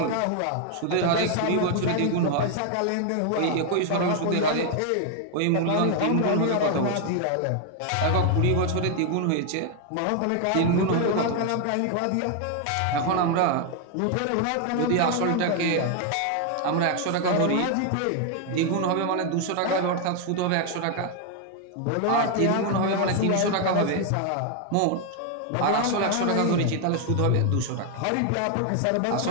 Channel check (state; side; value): different; both; correlation 0.01